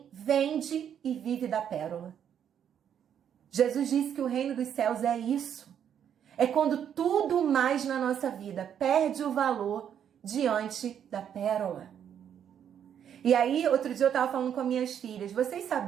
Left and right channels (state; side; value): quieter; left; 8.9 dB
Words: vende e vive da pérola. Jesus disse que o reino dos céus é isso. É quando tudo mais na nossa vida perde o valor diante da pérola. E aí, outro dia eu estava falando com as minhas filhas. Vocês